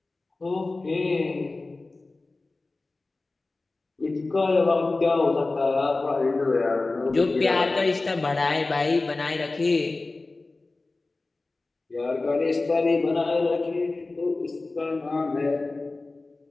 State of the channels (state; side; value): quieter; right; 3.3 dB